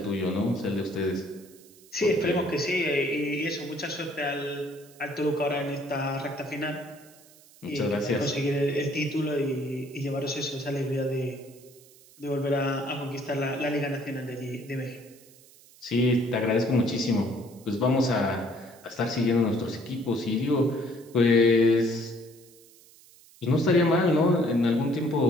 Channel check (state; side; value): noise; right; hiss, 25 dB below the sound